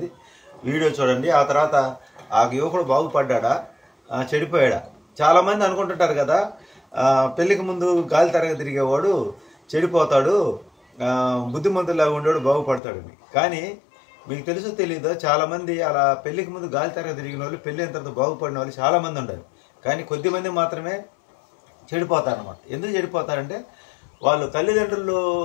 వీడియో చూడండి. ఆ తర్వాత ఆ యువకుడు బాగుపడ్డా చెడిపోయాడా? చాలామంది అనుకుంటుంటారు కదా, పెళ్ళికి ముందు గాలి తరగ తిరిగేవాడు చెడిపోతాడు, బుద్ధిమంతులాగా ఉండేవాడు బాగుపడతాడని. కానీ మీకు తెలుసో తెలీదో, చాలామంది అలా పెళ్ళికి ముందు గాలి తరగ తిరిగిన వాళ్ళు పెళ్ళి అయిన తర్వాత బాగుపడిన వాళ్ళు చాలామంది ఉంటారు. కానీ కొద్దిమంది మాత్రమే చెడిపోతారు అన్నమాట. ఎందుకు చెడిపోతారంటే వాళ్ళు తల్లిదండ్రులు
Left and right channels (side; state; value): right; drops out; at 12.8 s